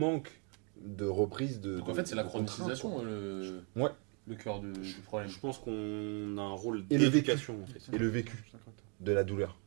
de reprise de. Donc en fait, c'est la de contrainte, chronotisation quoi. le... Ouais. le cœur du problème. Je pense qu'on a un rôle Et le d'éducation en fait. Et le vécu de la douleur,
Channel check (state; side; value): quieter; left; 36.6 dB